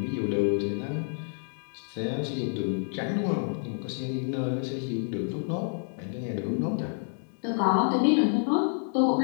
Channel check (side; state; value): right; silent; 59 dB below the other